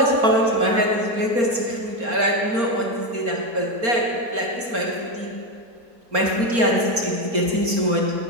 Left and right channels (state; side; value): late; left; 4.3 ms